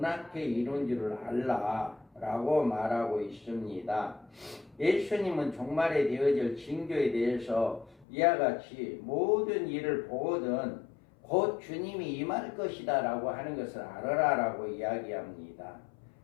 앞에 이룬 줄을 알라 라고 말하고 있습니다. 예수님은 종말에 되어질 징조에 대해서 이와 같이 모든 일을 보거든 곧 주님이 임할 것이다 라고 하는 것을 알아라 라고 이야기합니다.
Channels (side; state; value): right; drops out; at 8.1 s